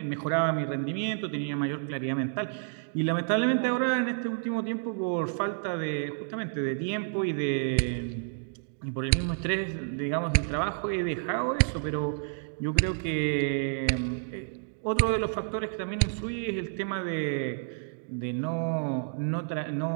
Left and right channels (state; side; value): silent; left; digital silence